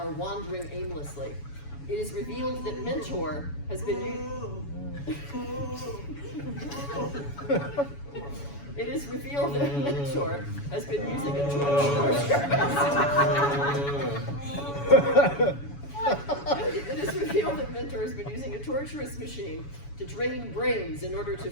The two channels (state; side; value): late; right; 7.1 ms